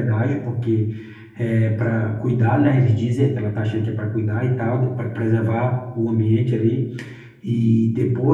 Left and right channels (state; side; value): identical; both; correlation 1.00